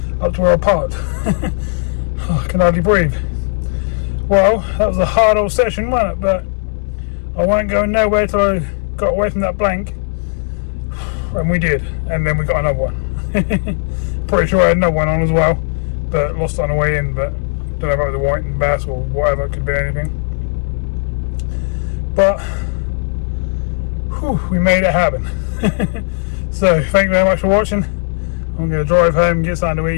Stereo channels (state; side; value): silent; right; digital silence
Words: up to where I parked. Oh, I can hardly breathe. Well, that was a hard old session, wasn't it? But I wasn't going nowhere till I got away from that blank. And we did. And then we got another one. Pretty sure I had another one on as well, but lost it on the way in. But don't know if it was a whiting bass or whatever, it could be anything. But whew, we made it happen. So thank you very much for watching. I'm going to drive home, get something to